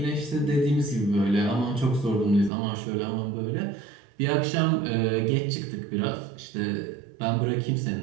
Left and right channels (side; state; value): left; drops out; at 2.5 s